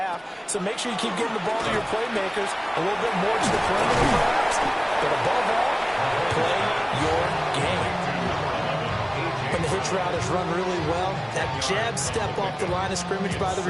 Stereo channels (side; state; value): both; identical; correlation 1.00